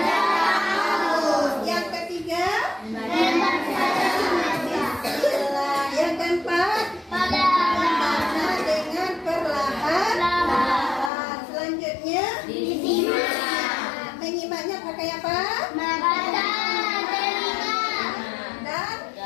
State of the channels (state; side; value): drops out; right; at 11.1 s